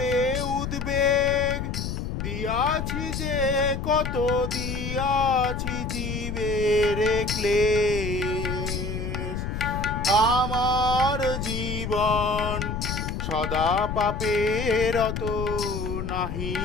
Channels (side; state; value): left; noise; rumble, 4 dB below the sound